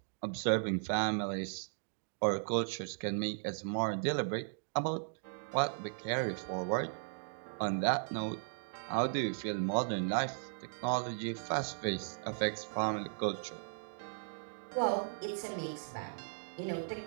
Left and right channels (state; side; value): silent; left; digital silence